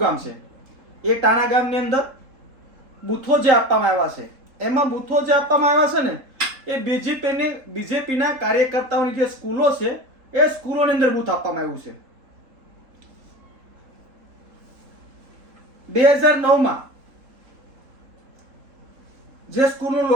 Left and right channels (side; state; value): left; late; 3.7 ms